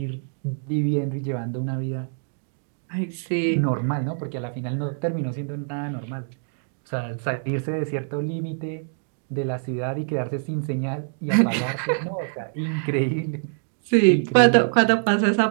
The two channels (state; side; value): silent; left; 62 dB below the other